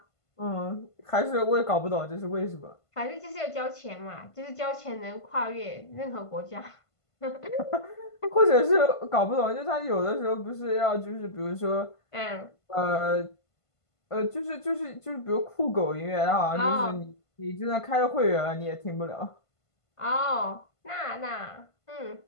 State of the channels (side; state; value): right; late; 1.5 ms